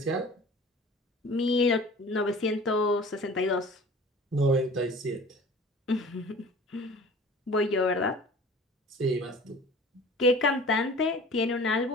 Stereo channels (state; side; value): normal; both; correlation 0.44